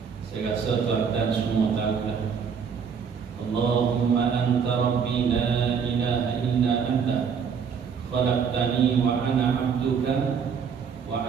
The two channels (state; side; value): quieter; left; 6.6 dB